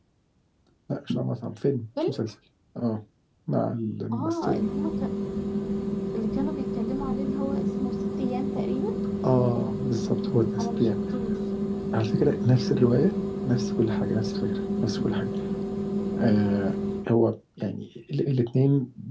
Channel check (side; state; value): both; identical; correlation 1.00